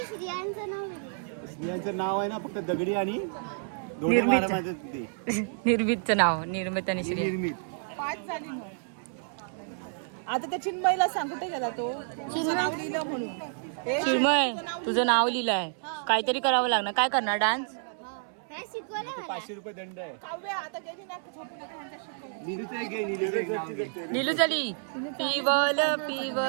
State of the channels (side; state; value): left; silent; 58 dB below the other